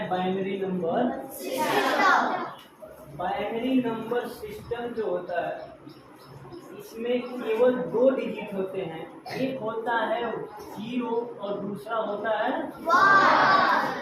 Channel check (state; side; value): identical; both; correlation 1.00